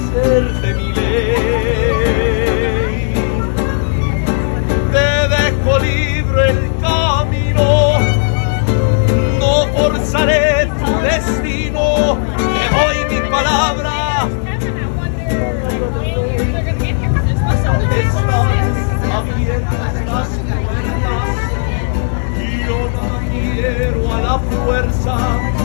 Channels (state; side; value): silent; right; digital silence